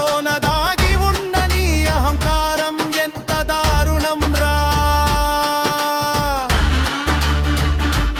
దాగి ఉన్న నీ అహంకారం ఎంత దారుణం రా.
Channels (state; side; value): identical; both; correlation 1.00